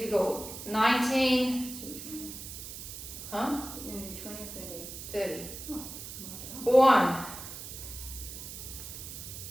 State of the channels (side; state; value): right; noise; hiss, 10 dB below the sound